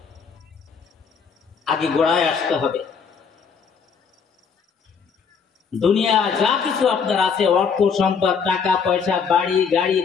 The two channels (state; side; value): quieter; right; 6.1 dB